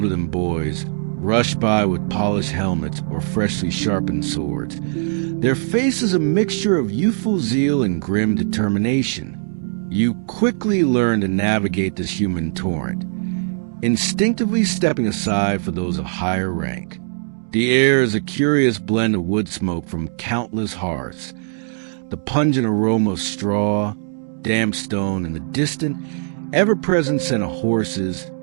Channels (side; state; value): left; silent; digital silence